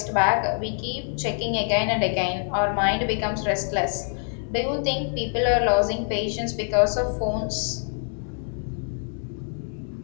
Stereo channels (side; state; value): right; silent; 62 dB below the other